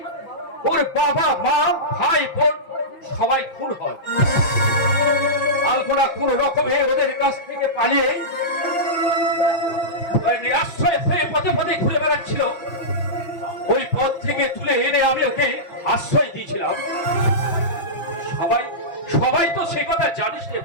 ওর বাবা, মা, ভাই, বোন সবাই খুন হয়। আলপনা কোন রকমে ওদের কাছ থেকে পালিয়ে নিরাশ্রয় হয়ে পথে পথে ঘুরে বেড়াচ্ছিল। ওই পথ থেকে তুলে এনে আমি ওকে আশ্রয় দিয়েছিলাম। সবাই সবাই তো সে কথা জানিস রে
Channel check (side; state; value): right; late; 5.8 ms